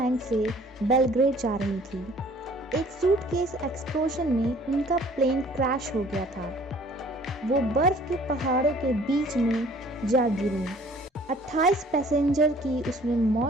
से बेलग्रेड जा रही थी। एक सूटकेस एक्सप्लोजन में उनका प्लेन क्रैश हो गया था। वो बर्फ के पहाड़ों के बीच में जा गिरी। 28 पैसेंजर की उसमें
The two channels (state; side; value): normal; both; correlation 0.54